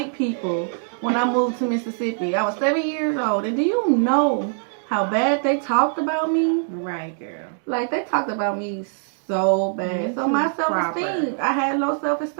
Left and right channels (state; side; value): silent; left; digital silence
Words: people when I moved to Mississippi. I was 7 years old. And do you know how bad they talked about me? Right, girl. Like, they talked about me so bad. So my self-esteem, I had low